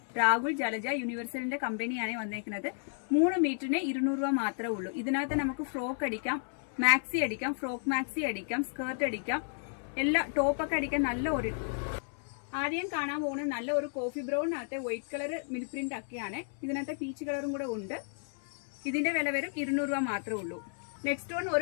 രാഹുൽ ജലജ യൂണിവേഴ്സലിന്റെ കമ്പനിയാണ് വന്നേക്കുന്നത്. 3 മീറ്ററിന് 200 രൂപ മാത്രമേ ഉള്ളൂ. ഇതിനകത്ത് നമുക്ക് ഫ്രോക്ക് അടിക്കാം, മാക്സി അടിക്കാം, ഫ്രോക്ക് മാക്സി അടിക്കാം, സ്കേർട്ട് അടിക്കാം, എല്ലാ ടോപ്പൊക്കെ അടിക്കാൻ നല്ല ഒരു. ആദ്യം കാണാൻ പോകുന്നത് നല്ല ഒരു കോഫി ബ്രൗണിനകത്തെ വൈറ്റ് കളർ മിൽ പ്രിന്റ് ഒക്കെയാണ്. ഇതിനകത്ത് പീച്ച് കളറും കൂടെ ഉണ്ട്. ഇതിന്റെ വില വരും 200 രൂപ മാത്രമേ ഉള്ളൂ. നെക്സ്റ്റ് വൺ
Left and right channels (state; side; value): silent; right; digital silence